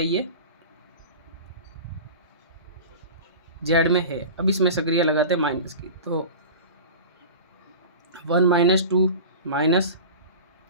ये जेड में है। अब इसमें सक्रिया लगाते हैं माइनस की, तो 1 - 2 -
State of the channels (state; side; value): inverted; both; correlation -0.34